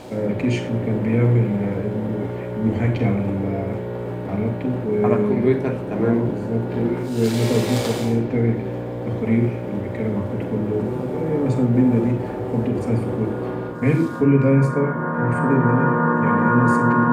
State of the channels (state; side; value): identical; both; correlation 1.00